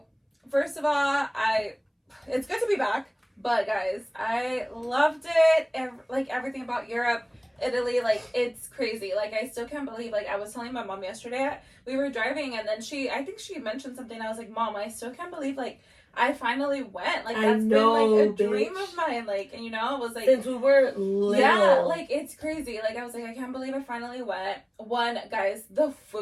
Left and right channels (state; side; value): identical; both; correlation 1.00